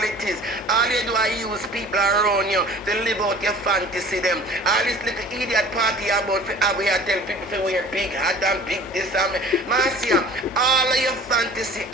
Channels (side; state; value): both; normal; correlation 0.46